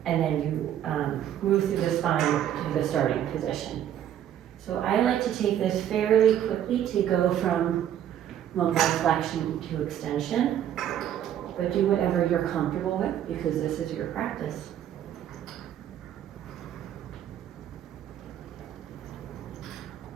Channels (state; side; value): quieter; left; 10.5 dB